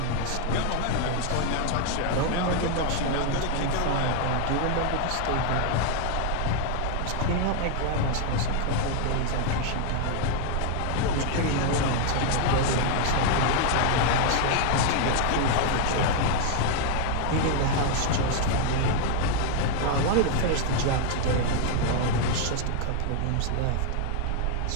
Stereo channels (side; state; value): both; different; correlation 0.00